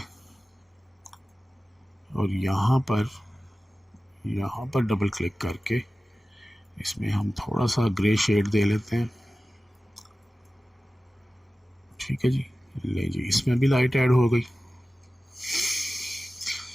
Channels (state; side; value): normal; both; correlation 0.96